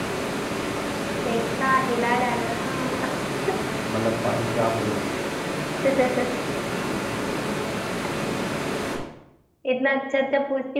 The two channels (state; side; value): identical; both; correlation 1.00